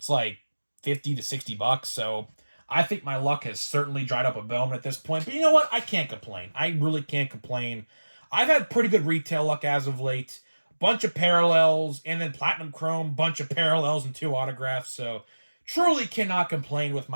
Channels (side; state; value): both; inverted; correlation -1.00